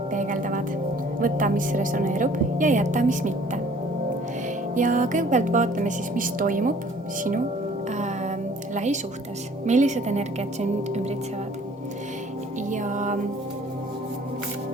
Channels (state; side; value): normal; both; correlation 0.54